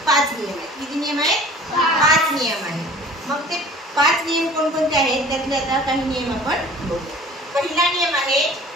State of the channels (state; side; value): normal; both; correlation 0.47